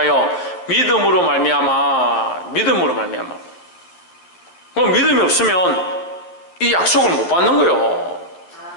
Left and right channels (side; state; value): right; late; 11 ms